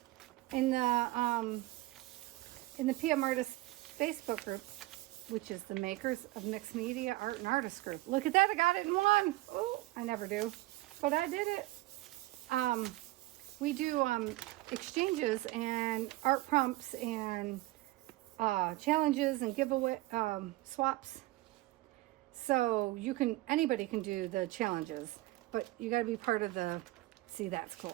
in the PM Artist Facebook group, which is the Makers of Mixed Media Art and Artist group. Look at that, I got it in one. Oh, I never do, but I did it. We do exchanges and art prompts and challenges and giveaway swaps. So anybody can do the challenges, but you got to be part of the. See, that's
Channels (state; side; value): quieter; left; 19.0 dB